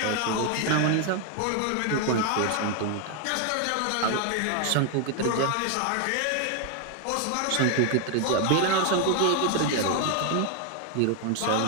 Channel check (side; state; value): both; different; correlation 0.00